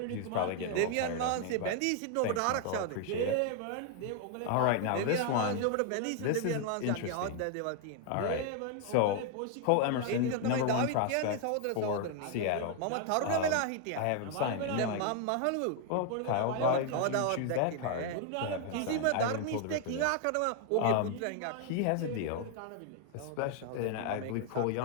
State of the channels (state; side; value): different; both; correlation 0.00